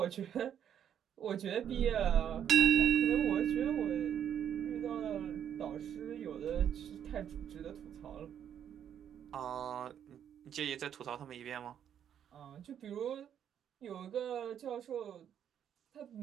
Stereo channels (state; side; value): quieter; left; 9.3 dB